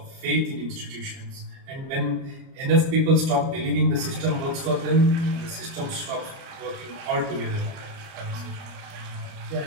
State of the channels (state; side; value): late; left; 30 ms